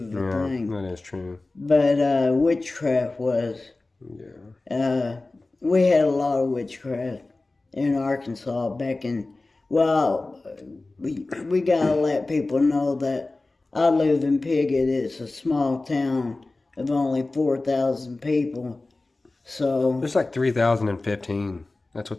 a thing. That is true. But witchcraft was. Yeah. We had a lot of witchcraft in Arkansas back in. Well, we gotta let people know that I live in Piggott. It's a small town of only 4,000 people. So there's like 3,015. That's what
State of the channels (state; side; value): quieter; right; 3.2 dB